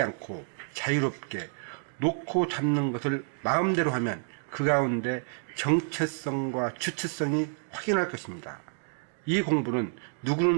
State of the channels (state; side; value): silent; left; 58 dB below the other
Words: 않고 자유롭게 놓고 잡는 것을 마음대로 하면 그 가운데 정체성과 주체성이 확인할 것입니다. 이 공부는